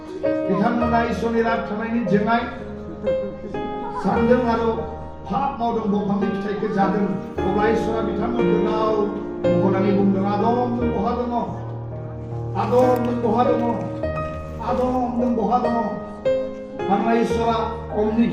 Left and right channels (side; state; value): both; identical; correlation 1.00